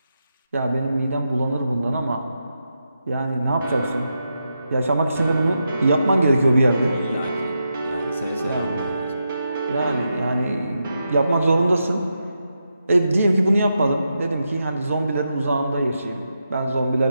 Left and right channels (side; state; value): both; inverted; correlation -0.86